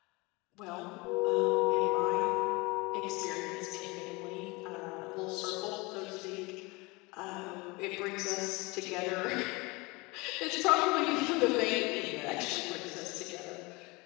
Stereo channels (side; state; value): right; quieter; 25.0 dB